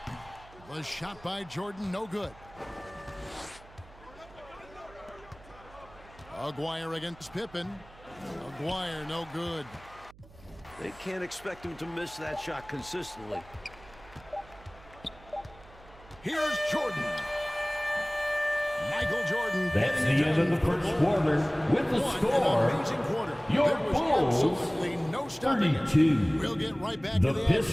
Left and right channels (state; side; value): noise; right; hum, 22 dB below the sound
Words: The shot by Jordan, no good. Aguirre against Pippen. Aguirre, no good. They can't expect him to miss that shot consistently. Here's Jordan. Michael Jordan. That's getting the it end of done the for first Bulls. quarter with the What score. an amazing quarter. Your There was Bulls, absolutely no stopping it. 32. We'll get right back The to the